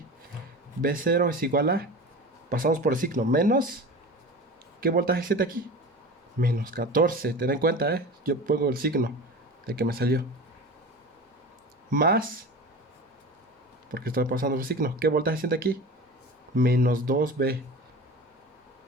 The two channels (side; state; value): both; normal; correlation 0.33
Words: V0 es igual a... Pasamos por el signo. Menos... ¿Qué voltaje siente aquí? Menos 14. Ten en cuenta, ¿eh? Yo pongo el signo de que me salió. Más... Porque estoy pasando el signo. ¿Qué voltaje siente aquí? Menos 2V.